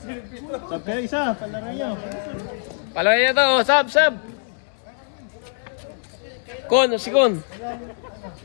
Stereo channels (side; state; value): right; silent; 63 dB below the other